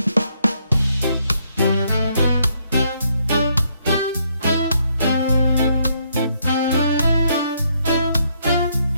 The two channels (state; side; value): inverted; both; correlation -0.73